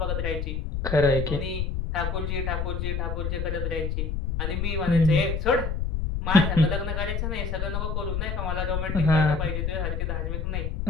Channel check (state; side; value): noise; left; rumble, 1 dB below the sound